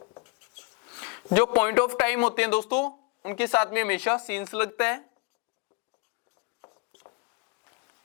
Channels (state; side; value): quieter; right; 27.7 dB